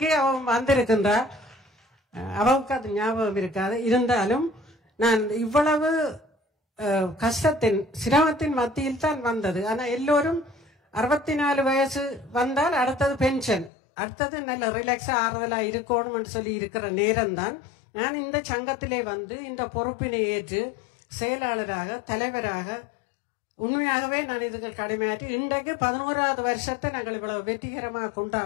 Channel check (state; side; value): drops out; right; at 13.7 s